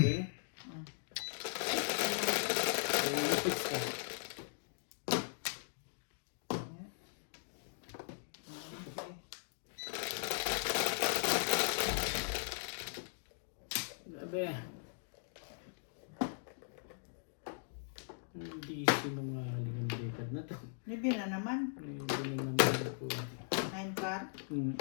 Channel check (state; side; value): silent; right; digital silence